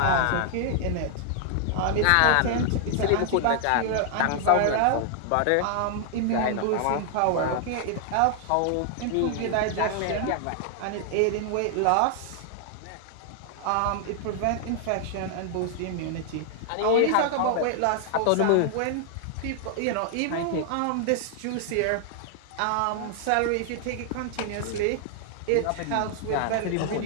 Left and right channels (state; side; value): different; both; correlation 0.00